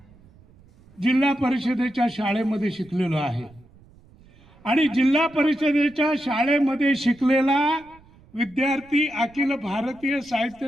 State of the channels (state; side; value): noise; right; rumble, 27 dB below the sound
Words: जिल्हा परिषदेच्या शाळेमध्ये शिकलेलो आहे आणि जिल्हा परिषदेच्या शाळेमध्ये शिकलेला विद्यार्थी अखिल भारतीय